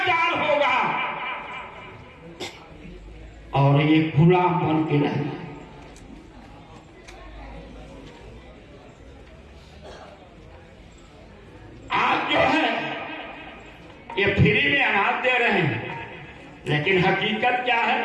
होगा और ये गुलाम बन के रहना। आज जो है ये फ्री में अनाज दे रहे हैं, लेकिन हकीकत क्या है?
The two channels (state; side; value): identical; both; correlation 1.00